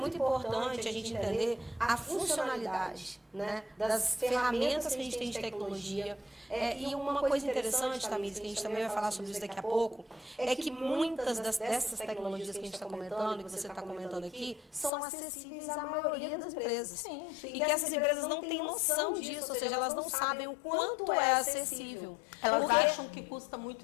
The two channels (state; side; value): drops out; right; at 14.9 s